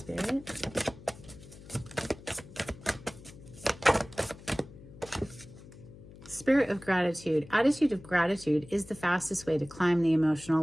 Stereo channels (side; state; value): left; noise; hum, 18 dB below the sound